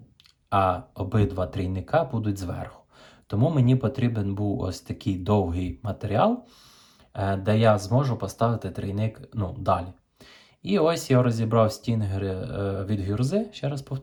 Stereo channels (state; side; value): identical; both; correlation 1.00